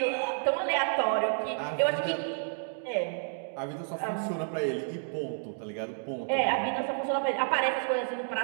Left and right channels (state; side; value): silent; left; digital silence